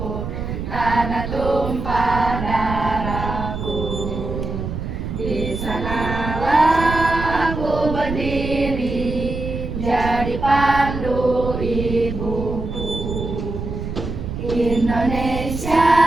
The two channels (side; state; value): right; noise; rumble, 5 dB below the sound